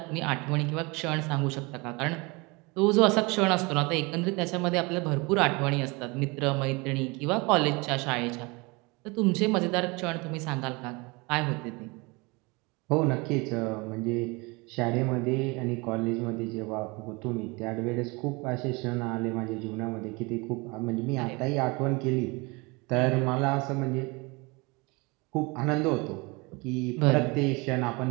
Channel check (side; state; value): left; quieter; 26.6 dB